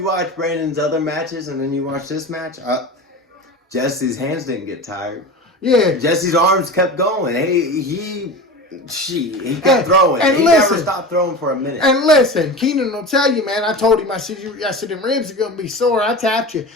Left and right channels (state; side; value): normal; both; correlation 0.30